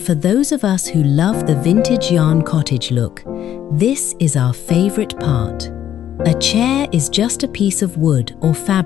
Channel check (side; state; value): right; quieter; 10.7 dB